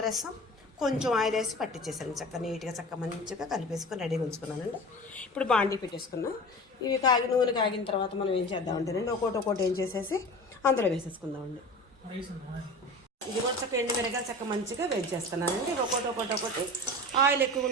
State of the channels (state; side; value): normal; both; correlation 0.35